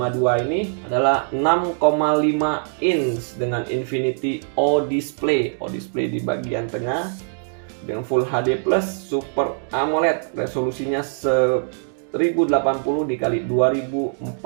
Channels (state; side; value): silent; left; digital silence